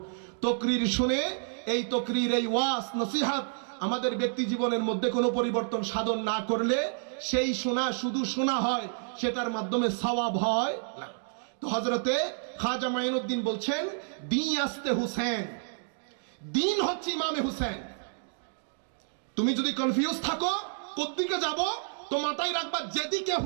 তকরির শুনে এই তকরির, এই ওয়াজ নসিহত আমাদের ব্যক্তি জীবনের মধ্যে কোনো পরিবর্তন সাধন না করলে সেই শোনা শুধু শোনা হয়, সেটার মাধ্যমে সওয়াব হয় না। তো হযরতে খাজা মাইনুদ্দিন বলছেন, দিন আস্তে হুসেন, দিন হচ্ছে ইমামে হুসেন। তুমি যদি কনফিউজ থাকো কোত্থেকে যাব, তো মাথায় রাখবা যেদিকে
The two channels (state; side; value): silent; left; digital silence